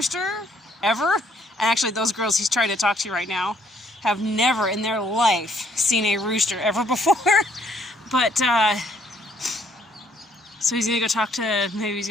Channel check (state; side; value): normal; both; correlation 0.66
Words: ever. And actually those girls he's trying to talk to right now have never in their life seen a rooster ever before. But, so he's gonna go talk to, maybe he's